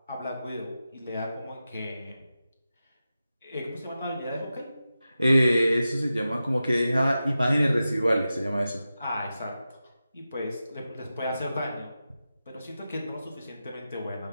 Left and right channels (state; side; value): inverted; both; correlation -0.92